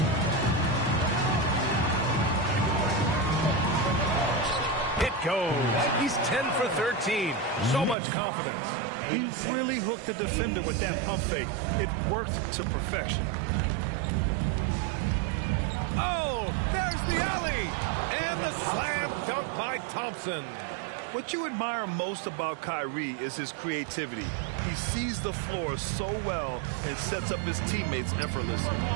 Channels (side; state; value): left; drops out; at 8.0 s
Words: It goes. He's 10 for 13. So much confidence. He really hooked the defender with that pump fake. It worked to perfection. Oh, there's the alley. And the slam dunk by Thompson. What you admire most about Kyrie is his creativity. He sees the floor so well and sets up his teammates effortlessly.